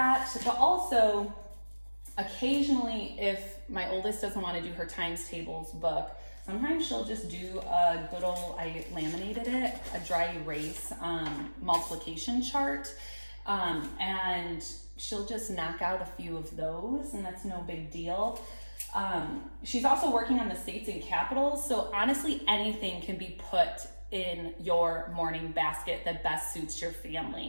But also, occasionally, if my oldest doesn't want to do her times tables book, sometimes she'll just do a good old, I laminated it, a dry erase multiplication chart. And she'll just knock out a few of those, and that's no big deal. She's also working on the states and capitals, so honestly, anything can be put in your morning basket that best suits your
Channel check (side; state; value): both; inverted; correlation -1.00